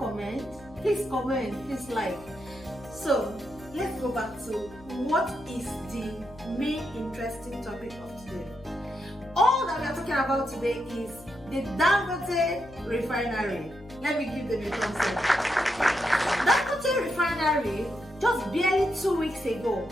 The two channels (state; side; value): noise; left; hum, 21 dB below the sound